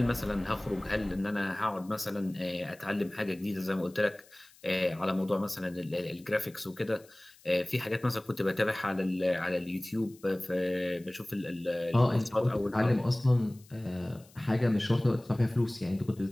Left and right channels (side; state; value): left; noise; hiss, 26 dB below the sound